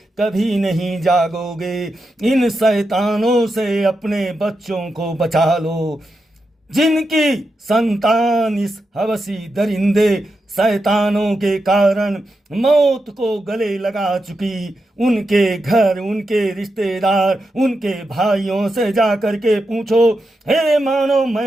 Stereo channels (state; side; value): normal; both; correlation 0.87